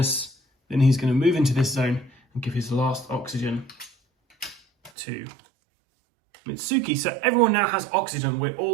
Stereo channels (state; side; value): drops out; left; at 4.9 s